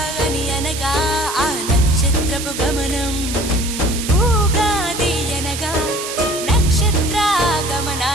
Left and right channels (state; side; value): noise; right; hiss, 7 dB below the sound